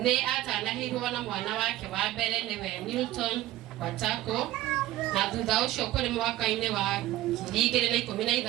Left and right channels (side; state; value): left; quieter; 15.3 dB